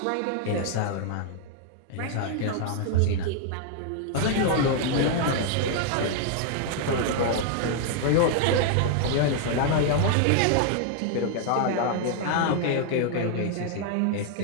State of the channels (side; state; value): both; different; correlation 0.00